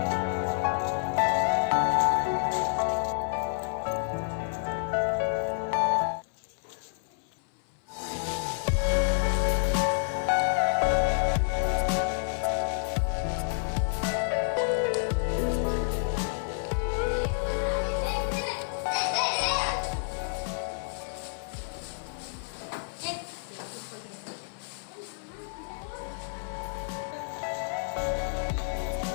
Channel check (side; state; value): right; silent; 58 dB below the other